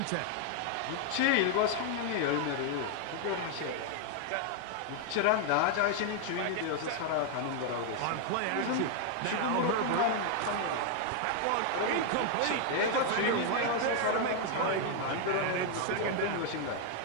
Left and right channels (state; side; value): different; both; correlation 0.00